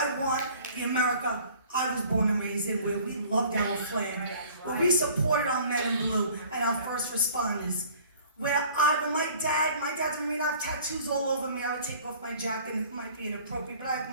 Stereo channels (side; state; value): both; inverted; correlation -0.51